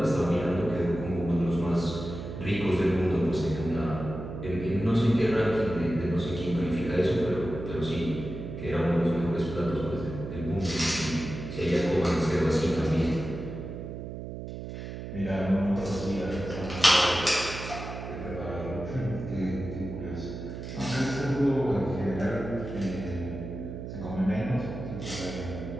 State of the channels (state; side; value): noise; right; hum, 8 dB below the sound